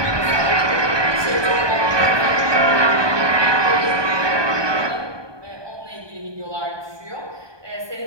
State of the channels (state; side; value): late; left; 1.2 ms